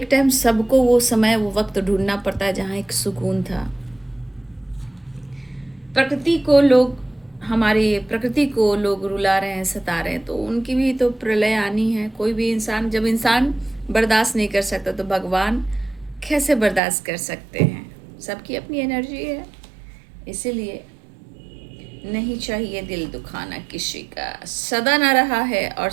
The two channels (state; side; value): drops out; left; at 16.8 s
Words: टाइम सबको वो समय, वो वक्त ढूंढना पड़ता है जहाँ एक सुकून था। प्रकृति को लोग, हमारी प्रकृति को लोग रुला रहे हैं, सता रहे हैं, तो उनकी भी तो प्रलय आनी है। कोई भी इंसान, जब इंसान बर्दाश्त नहीं कर सकता तो भगवान कैसे बर्दाश्त कर सकते हैं। सबकी अपनी एनर्जी है, इसीलिए नहीं चाहिए दिल दुखाना किसी का। सदा ना रहा है और